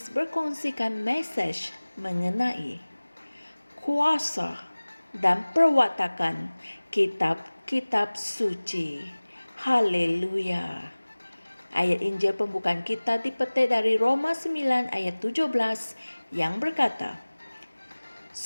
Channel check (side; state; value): both; inverted; correlation -1.00